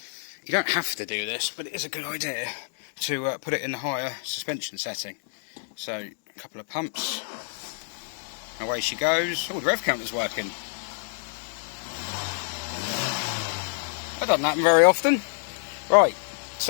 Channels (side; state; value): right; silent; digital silence